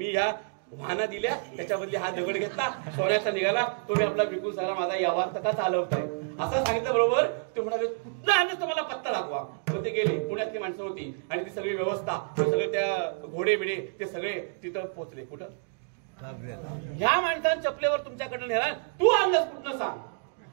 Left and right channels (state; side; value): silent; left; digital silence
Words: ह्या वाहना दिल्या, त्याच्या बदली हा दगड घेतला, सोन्याचा निघाला, तो मी आपला विकून सगळा माझा व्यवहार तका चालवताय असं सांगितलं. बरोबर ते म्हणाले कुठलं आणलं तुम्हाला पत्ता दाखवा. मग ते गेले, पुण्यातली माणसं होती आणि ती सगळी व्यवस्था, सगळे त्या घोडे बिडे ते सगळे तिथं पोहोचले. कुठं, ह्या माणसानं चपलेवर तुमच्याकडनं नेला, तू आणलास कुठनं सांग.